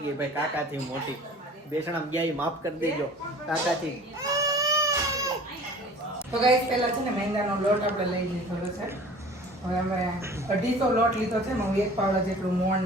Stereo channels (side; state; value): both; normal; correlation 0.44